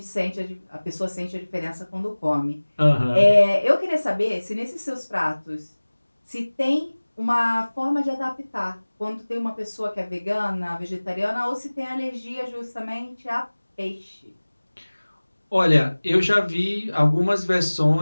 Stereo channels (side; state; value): both; inverted; correlation -1.00